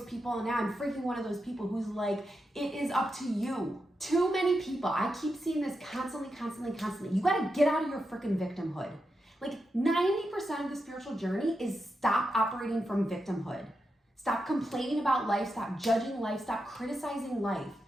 people, and now I'm freaking one of those people who's like, it is up to you. Too many people, I keep seeing this constantly. You gotta get out of your freaking victimhood. Like 90% of the spiritual journey is stop operating from victimhood. Stop complaining about life, stop judging life, stop criticizing life.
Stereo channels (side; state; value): both; normal; correlation 0.87